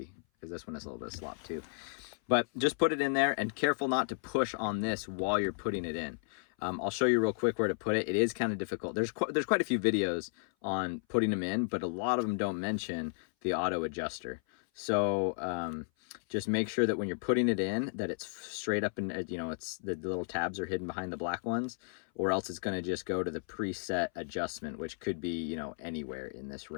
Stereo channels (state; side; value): silent; right; 55 dB below the other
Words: because this one has a little bit of slop too. But just put it in there, and careful not to push on this while you're putting it in. I'll show you real quick where to put it. It is kind of difficult. There's quite a few videos on putting them in, but a lot of them don't mention the auto adjuster. So just make sure that when you're putting it in, that it's straight up, and it's the little tabs are hidden behind the black ones, or else it's going to just go to the preset adjustment, which could be anywhere in this